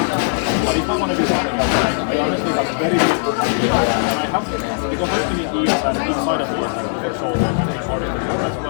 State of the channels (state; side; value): silent; right; digital silence